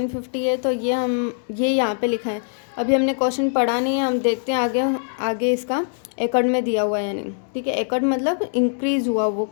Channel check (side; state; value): right; silent; digital silence